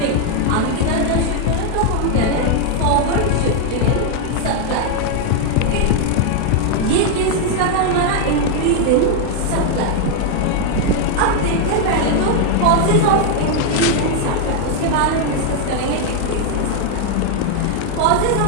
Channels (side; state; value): both; different; correlation 0.00